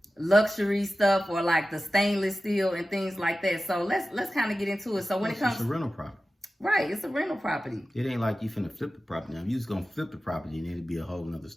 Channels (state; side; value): normal; both; correlation 0.95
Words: luxury stuff or like the stainless steel and things like that. So let's kind of get into it. So when it comes to rental property. Right, it's a rental property. It ain't like you finna flip the property. Now, if you was gonna flip the property, then it'd be a whole nother